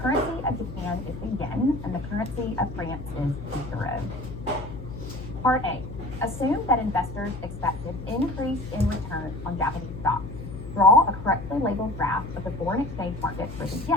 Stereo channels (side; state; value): left; noise; hum, 11 dB below the sound